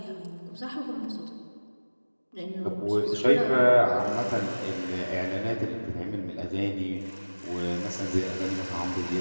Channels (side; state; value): both; inverted; correlation -1.00